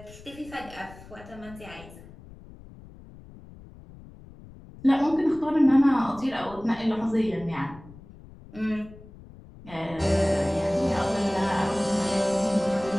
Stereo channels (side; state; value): left; noise; rumble, 19 dB below the sound